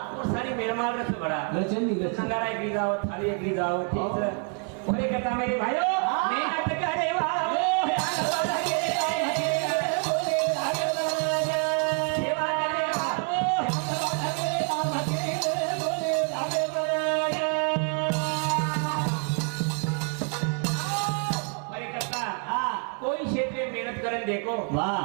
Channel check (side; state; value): left; quieter; 39.1 dB